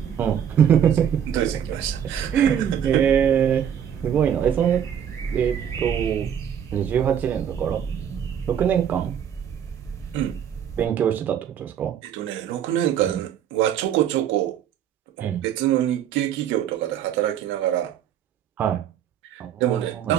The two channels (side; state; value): left; quieter; 9.2 dB